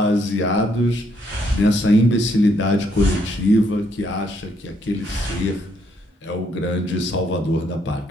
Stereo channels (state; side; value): normal; both; correlation 0.72